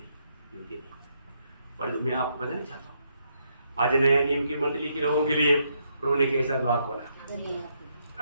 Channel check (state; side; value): inverted; both; correlation -0.76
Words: पर मैं आपको बताना चाहता हूँ, आज नया नियम की मंडली के लोगों के लिए प्रभु ने कैसा द्वार खोला।